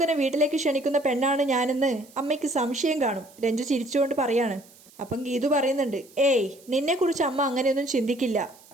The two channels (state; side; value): noise; right; hiss, 25 dB below the sound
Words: വീട്ടിലേക്ക് ക്ഷണിക്കുന്ന പെണ്ണാണ് ഞാനെന്ന് അമ്മയ്ക്ക് സംശയം കാണും. രഞ്ജു ചിരിച്ചുകൊണ്ട് പറയാണ്. അപ്പം ഗീതു പറയുന്നുണ്ട്, ഏയ് നിന്നെക്കുറിച്ച് അമ്മ അങ്ങനെയൊന്നും ചിന്തിക്കില്ല.